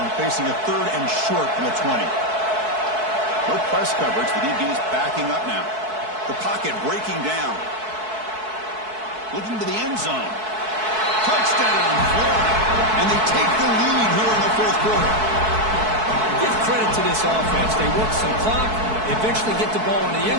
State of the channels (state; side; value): late; left; 4.6 ms